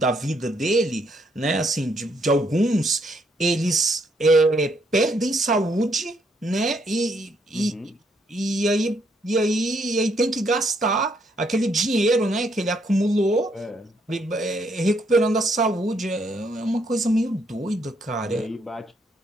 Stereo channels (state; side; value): normal; both; correlation 0.72